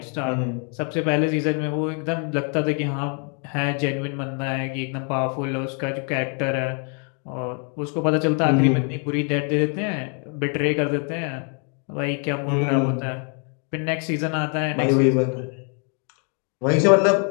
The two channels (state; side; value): quieter; right; 39.8 dB